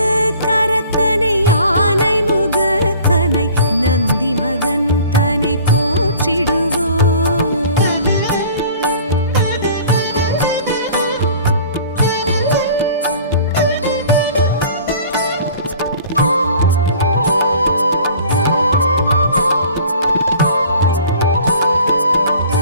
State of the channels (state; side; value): inverted; both; correlation -0.48